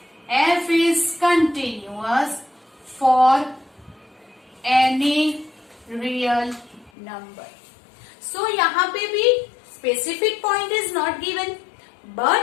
f is continuous for any real number. So, यहाँ पे भी specific point is not given,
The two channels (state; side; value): drops out; right; at 6.9 s